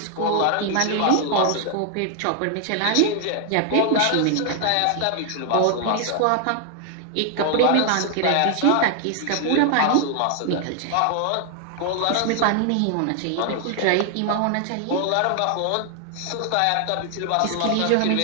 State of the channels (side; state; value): both; different; correlation 0.00